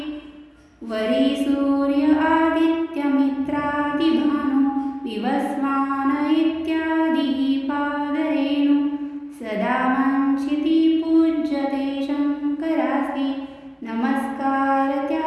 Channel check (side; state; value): both; identical; correlation 1.00